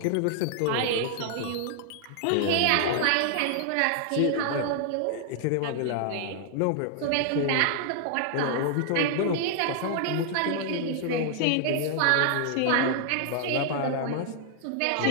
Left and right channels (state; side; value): different; both; correlation 0.00